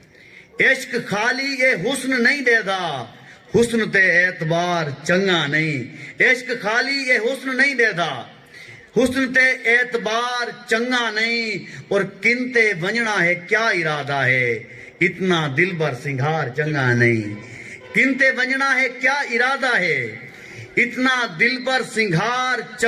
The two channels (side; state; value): both; identical; correlation 1.00